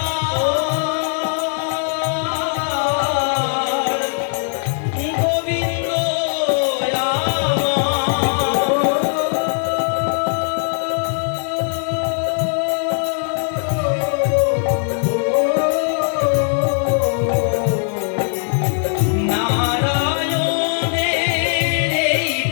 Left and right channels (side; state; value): right; silent; 65 dB below the other